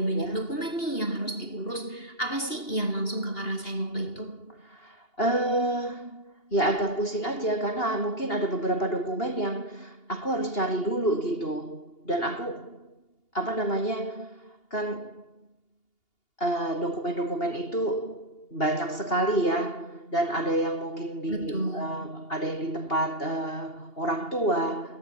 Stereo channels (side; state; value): right; late; 2.8 ms